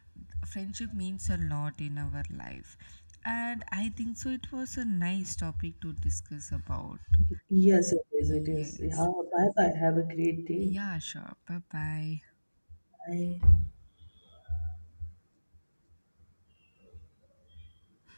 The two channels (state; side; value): inverted; both; correlation -1.00